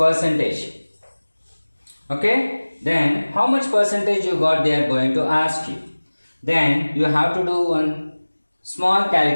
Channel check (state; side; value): inverted; both; correlation -1.00